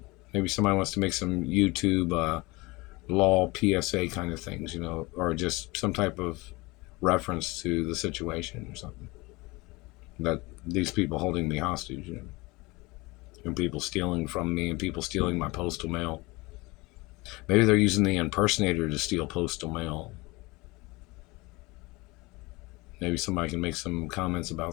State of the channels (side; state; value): right; quieter; 23.3 dB